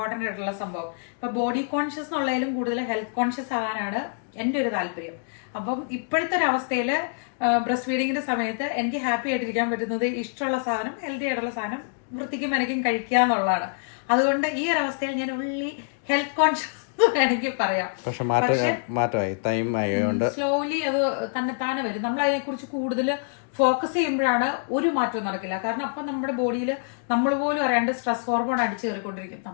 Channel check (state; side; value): silent; right; digital silence